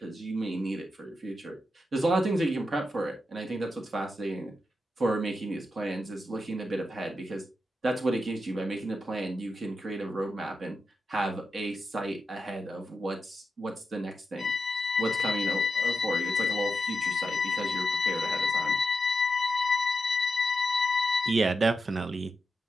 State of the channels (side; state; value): both; normal; correlation 0.87